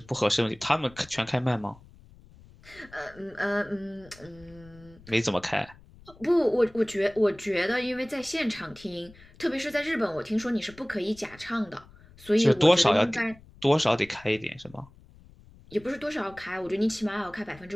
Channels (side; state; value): left; noise; rumble, 24 dB below the sound